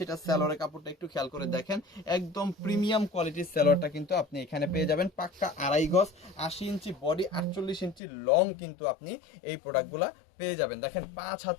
এটা সালোয়ারের কাপড়টা একটু খেয়াল করে দেখেন, একদম প্রিমিয়াম কোয়ালিটির সালোয়ারটা কিন্তু আপনি এখানে পেয়ে যাবেন। পাক্কা 2.5 গজ, 80 ইঞ্চি বডি, 48 ইঞ্চি লং কিন্তু আপনি এই প্রোডাক্টগুলা পেয়ে যাবেন। দেখেন, 5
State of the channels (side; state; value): right; drops out; at 8.0 s